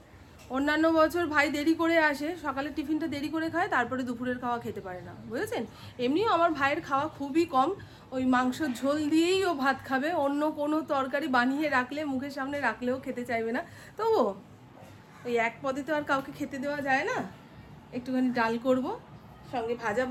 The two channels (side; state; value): both; identical; correlation 1.00